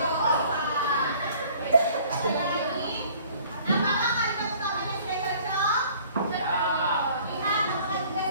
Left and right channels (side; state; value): both; inverted; correlation -0.53